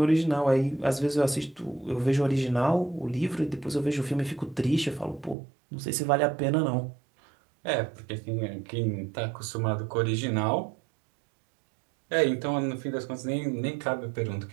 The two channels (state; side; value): drops out; left; at 5.4 s